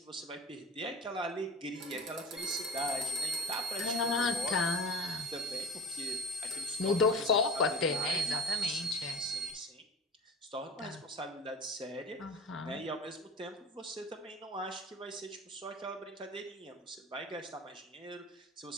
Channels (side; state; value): both; normal; correlation 0.33